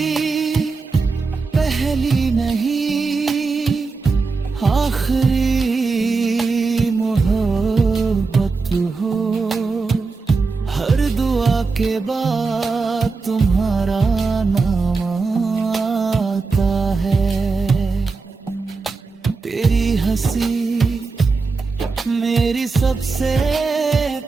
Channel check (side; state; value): left; quieter; 4.3 dB